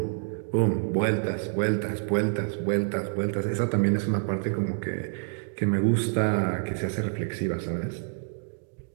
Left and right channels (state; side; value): silent; left; digital silence